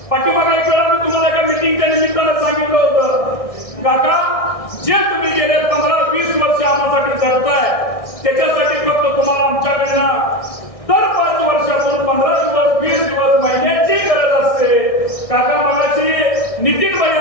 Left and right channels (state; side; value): late; right; 1.6 ms